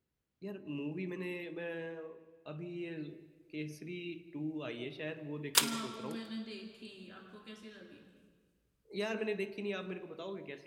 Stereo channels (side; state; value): both; identical; correlation 1.00